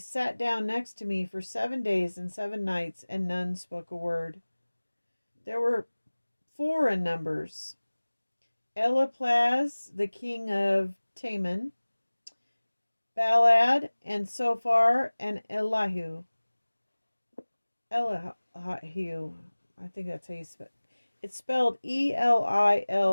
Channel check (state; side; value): inverted; both; correlation -1.00